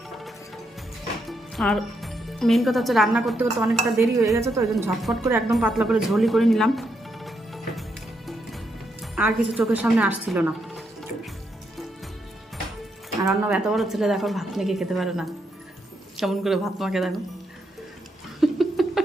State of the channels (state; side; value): normal; both; correlation 0.80